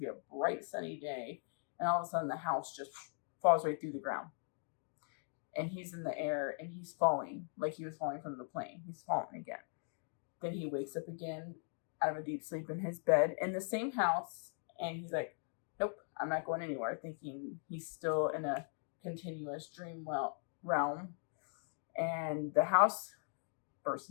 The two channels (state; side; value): silent; right; 51 dB below the other